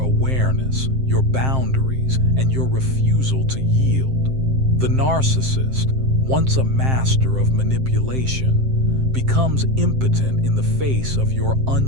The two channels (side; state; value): left; late; 7.6 ms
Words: your boundaries, and your refusal to yield. The narcissist, once a master of manipulation, becomes impotent in the face of your